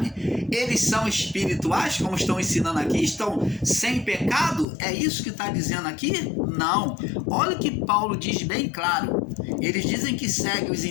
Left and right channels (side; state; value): right; drops out; at 4.7 s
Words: eles são espirituais, como estão ensinando aqui, estão sem pecado? É isso que está dizendo aqui? Não. Olha o que Paulo diz bem claro. Eles dizem que seguem os